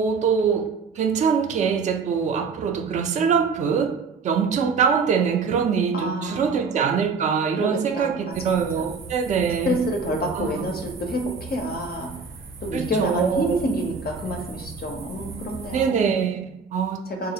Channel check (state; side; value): quieter; left; 4.9 dB